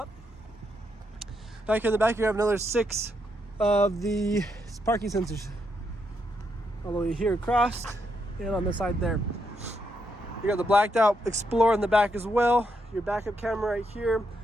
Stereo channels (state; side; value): normal; both; correlation 0.79